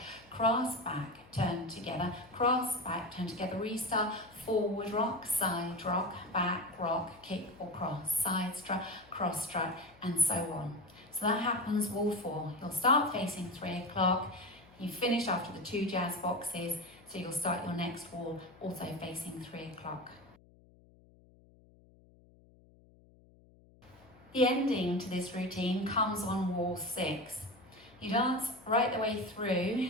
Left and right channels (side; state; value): left; noise; hum, 27 dB below the sound